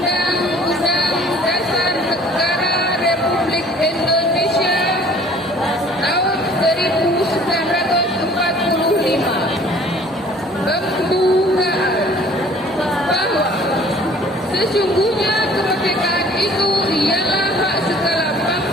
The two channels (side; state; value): both; normal; correlation 0.52